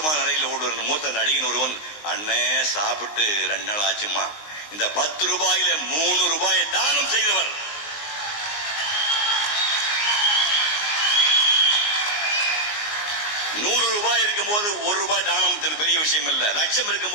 நிலையில் ஓடுவார் மூத்த நடிகன் ஒருவன், அண்ணே சாப்பிட்டு 2 நாள் ஆச்சுமா, இந்த 10 ரூபாயில 3 ரூபாயை தானம் செய்தவர். ₹100 இருக்கும் போது 1 ரூபாய் தானம் பெரிய விஷயம் இல்ல. லட்சம் இருக்கும்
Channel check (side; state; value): right; late; 19 ms